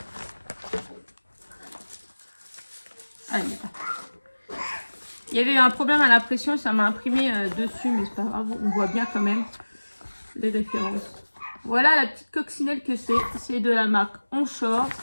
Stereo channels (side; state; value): both; inverted; correlation -1.00